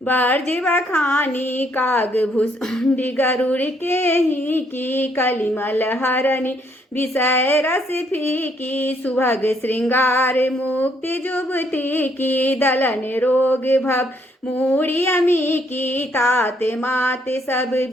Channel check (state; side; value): normal; both; correlation 0.70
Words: बर्ज बखानी। काग भूषुंडी गरुड़ के ही की। कलिमल हरणी विषय रस फीकी। सुभग श्रृंगार मुक्ति जुगति की। दलन रोग भव मूढ़ी अमी की। ताते माते सब